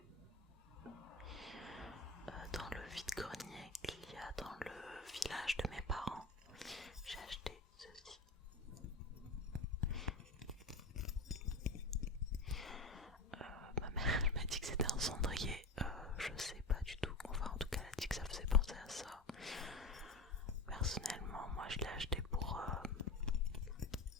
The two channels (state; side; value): quieter; right; 3.3 dB